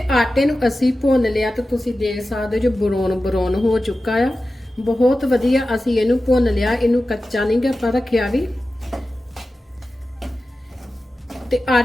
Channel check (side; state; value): both; normal; correlation 0.94